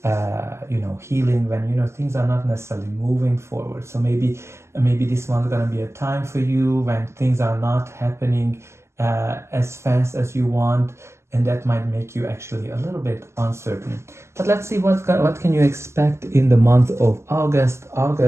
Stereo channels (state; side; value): late; left; 0.13 ms